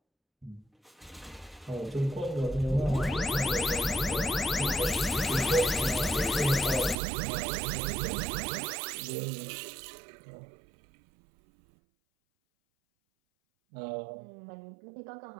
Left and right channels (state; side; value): drops out; left; at 7.0 s